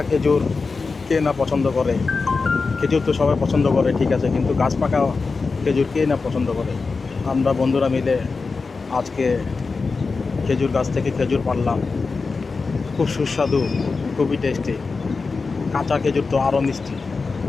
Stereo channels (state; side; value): quieter; right; 4.4 dB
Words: খেজুর কে না পছন্দ করে? খেজুর তো সবাই পছন্দ করে, ঠিক আছে, কিন্তু গাছ পাকা খেজুর কে না পছন্দ করে? আমরা বন্ধুরা মিলে আজকে খেজুর গাছ থেকে খেজুর পাড়লাম। খুব সুস্বাদু, খুবই টেস্টি। কাঁচা খেজুর তো আরও মিষ্টি।